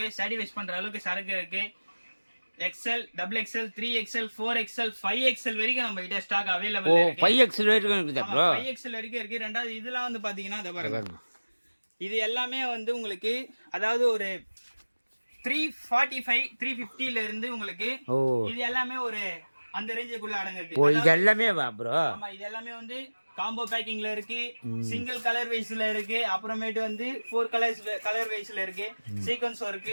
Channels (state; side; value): inverted; both; correlation -1.00